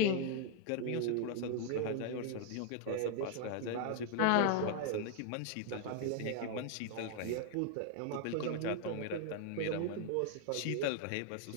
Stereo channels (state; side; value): different; both; correlation 0.00